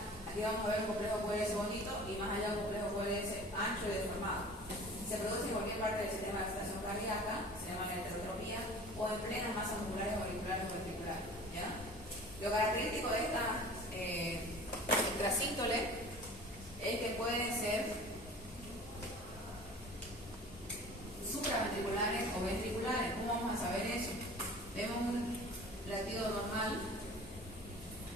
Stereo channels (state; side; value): normal; both; correlation 0.42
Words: Aquí vamos a ver un complejo QRS bonito y más allá un complejo QRS ancho y deformado. Se produce en cualquier parte del sistema de excitación cardíaca, se llama la heterotropía, o en plenas masas musculares auriculares o ventriculares, ¿ya? Lo característico de estas extrasístoles es que pueden ser supraventriculares o ventriculares. ¿Cómo vamos a saber eso? Vemos un latido normal,